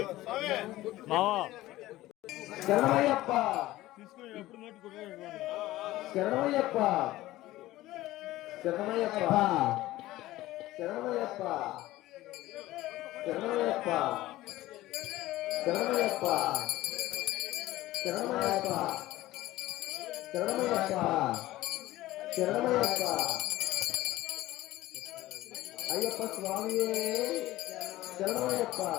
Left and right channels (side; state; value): right; quieter; 16.6 dB